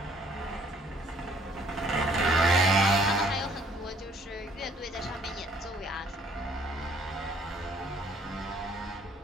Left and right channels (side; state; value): both; normal; correlation 0.61